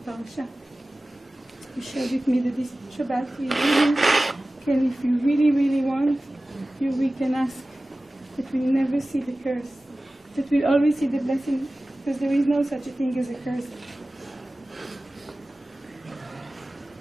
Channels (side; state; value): both; normal; correlation 0.97